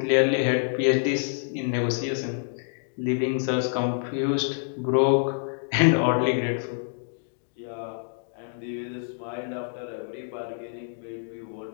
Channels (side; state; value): right; silent; digital silence